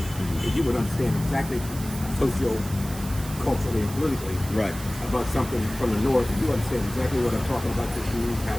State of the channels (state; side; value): noise; right; hiss, 14 dB below the sound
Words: and you would understand exactly culturally and politically Right. about something from the north, and you understand exactly what I'm talking about because you